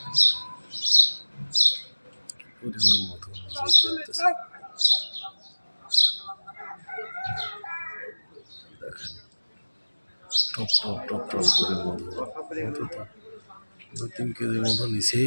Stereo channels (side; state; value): both; inverted; correlation -1.00